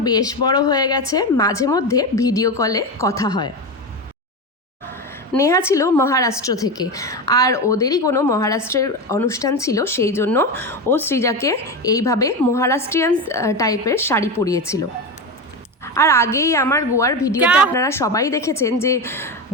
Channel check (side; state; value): both; normal; correlation 0.18